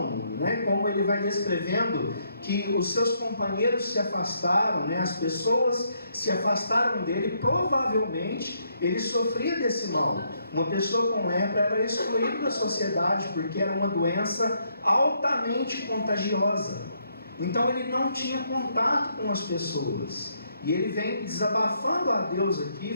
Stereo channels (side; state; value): both; inverted; correlation -0.74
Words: né, como ele vai descrevendo que os seus companheiros se afastaram, né, as pessoas se afastaram dele, provavelmente ele sofria desse mal. Uma pessoa com lepra era excluída da sociedade, porque era uma doença altamente contagiosa. Então ele não tinha contato com as pessoas. E ele vem desabafando a Deus aqui,